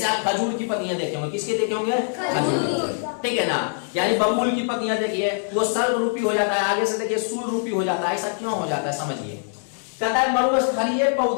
आप खजूर की पत्तियां देखे होंगे। किसके देखे होंगे? खजूर। ठीक है ना, यानी बबूल की पत्तियां देखिए वो सल्क रूपी हो जाता है, आगे से देखिए सूल रूपी हो जाता है। ऐसा क्यों हो जाता है समझिए। कहता है मरुस्थलीय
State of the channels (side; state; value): right; silent; digital silence